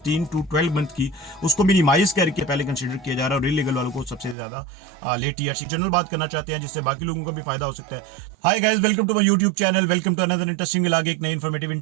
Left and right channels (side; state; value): left; drops out; at 4.4 s